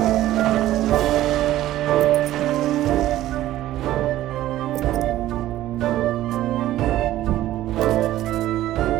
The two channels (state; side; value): quieter; left; 14.3 dB